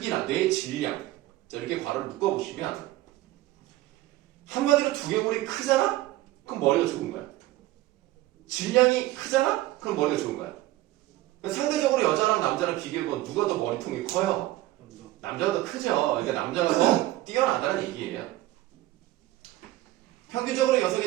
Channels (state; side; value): quieter; left; 16.6 dB